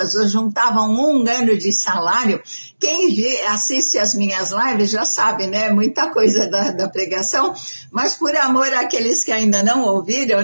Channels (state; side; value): inverted; both; correlation -1.00